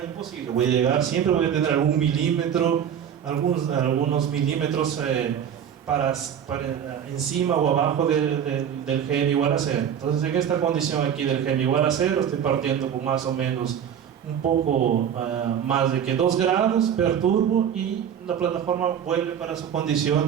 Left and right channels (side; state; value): left; quieter; 8.7 dB